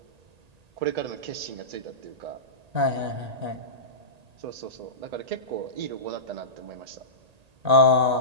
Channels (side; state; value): left; late; 1.8 ms